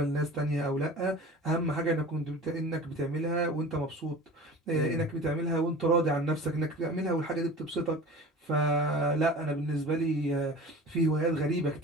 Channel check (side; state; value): both; normal; correlation 0.38